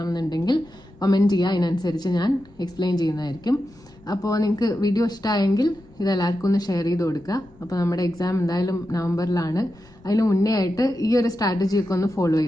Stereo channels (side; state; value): left; noise; rumble, 26 dB below the sound